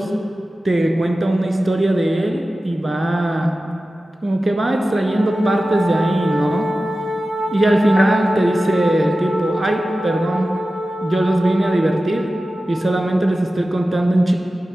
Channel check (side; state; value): both; normal; correlation 0.95